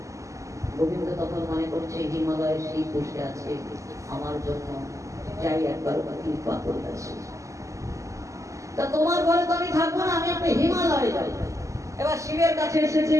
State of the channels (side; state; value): left; late; 0.15 ms